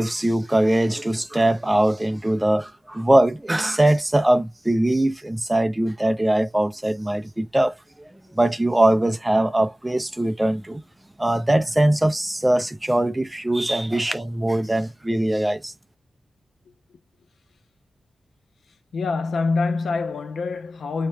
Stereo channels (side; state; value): both; normal; correlation 0.98